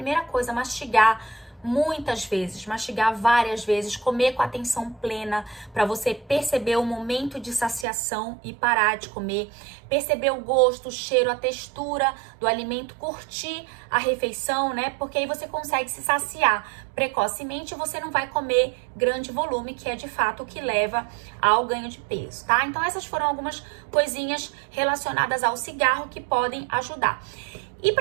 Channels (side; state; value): left; drops out; at 7.9 s